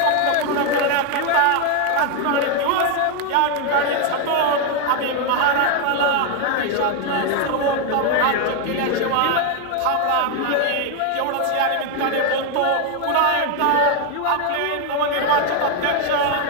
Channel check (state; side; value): different; both; correlation 0.01